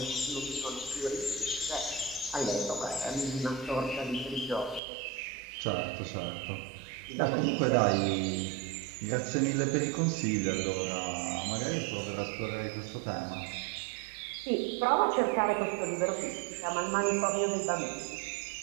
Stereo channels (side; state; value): left; drops out; at 4.8 s